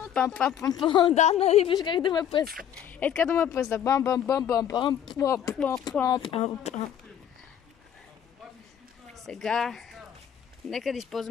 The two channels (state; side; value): quieter; right; 9.5 dB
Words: Пам. Да, нали, виж как да ме пръста. Е така да ме пръста. Бам. Сега... Нека да